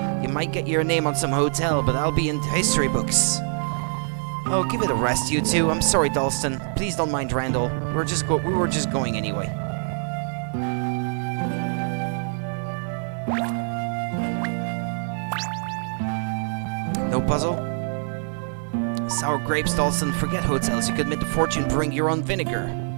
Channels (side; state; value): left; silent; 62 dB below the other